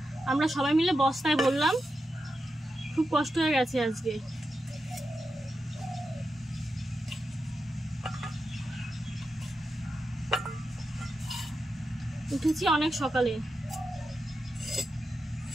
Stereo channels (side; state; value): both; normal; correlation 0.88